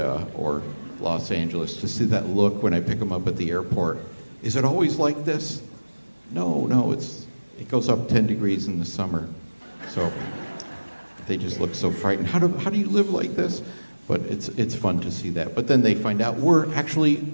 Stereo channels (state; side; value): inverted; both; correlation -1.00